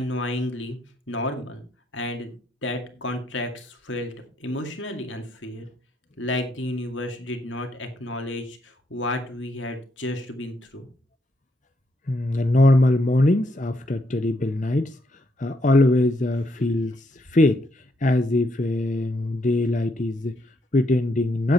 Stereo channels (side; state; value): both; normal; correlation 0.76